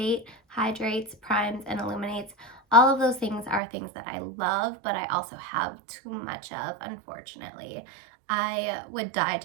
hydrates, primes, and illuminates. All of those things are things that I love, but I also have too much of, unfortunately. I would die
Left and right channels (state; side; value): drops out; left; at 3.6 s